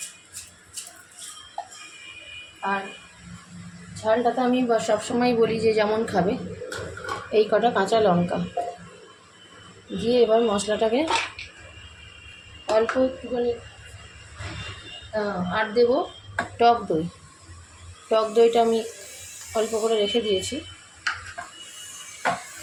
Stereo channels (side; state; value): both; identical; correlation 1.00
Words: আর ঝালটা তো আমি সবসময় বলি যে যেমন খাবে, এই কটা কাঁচা লঙ্কা দিয়ে এবার মশলাটাকে অল্প একটুখানি আর দেবো টক দই। টক দইটা আমি অল্প করে রেখে দিয়েছি।